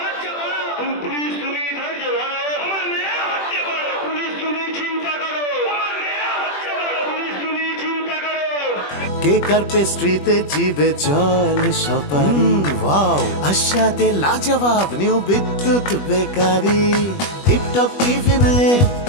কেক আর পেস্ট্রিতে জিবে জল সপারি ওয়াও আশাতে লাজবাব নিউ বিদ্যুৎ বেকারি টিপটপ টিফিনে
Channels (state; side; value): late; right; 21 ms